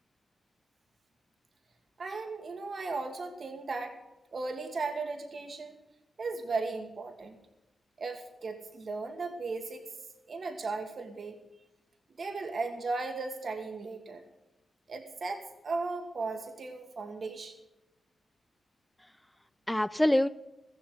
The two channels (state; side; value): normal; both; correlation 0.92